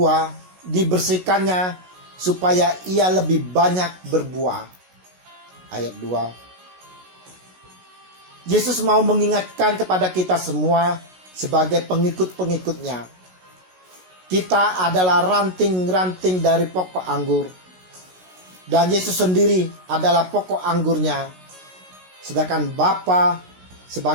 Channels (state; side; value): late; left; 16 ms